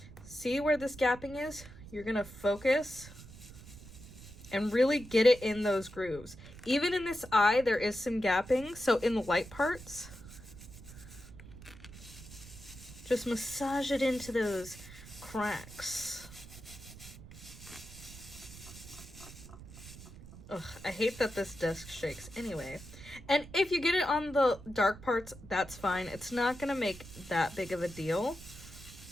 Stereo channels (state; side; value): noise; right; rumble, 16 dB below the sound